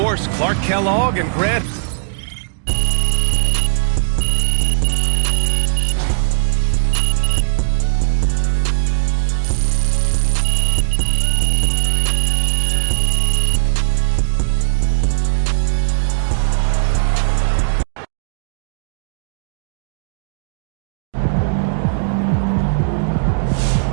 Clark Kellogg, and Grant.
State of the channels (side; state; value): left; silent; digital silence